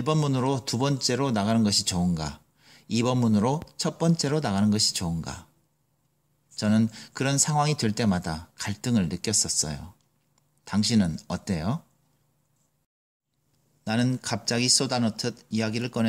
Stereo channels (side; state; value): both; identical; correlation 1.00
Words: 문으로 두 번째로 나가는 것이 좋은가? 2번 문으로 첫 번째로 나가는 것이 좋은가? 저는 그런 상황이 될 때마다 갈등을 느꼈었어요. 당신은 어때요? 나는 갑자기 쏟아놓듯 이야기를